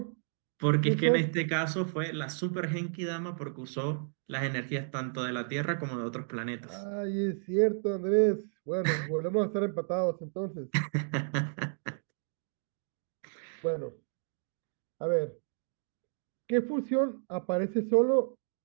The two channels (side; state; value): left; silent; digital silence